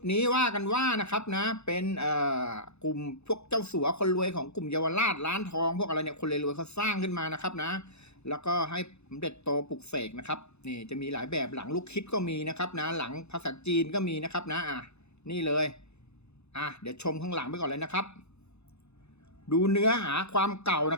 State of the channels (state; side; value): late; right; 0.80 ms